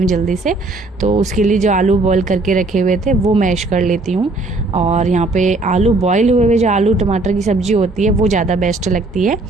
जल्दी से। तो उसके लिए जो आलू बॉईल करके रखे हुए थे वो मैश कर लेती हूँ, और यहाँ पे आलू बॉईल हुए जो आलू टमाटर की सब्ज़ी होती है वो ज़्यादा बेस्ट लगती है।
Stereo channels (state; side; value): quieter; left; 3.1 dB